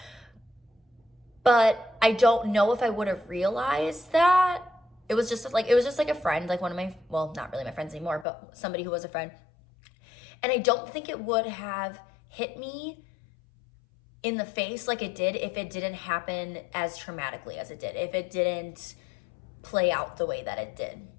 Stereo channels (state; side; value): drops out; right; at 8.2 s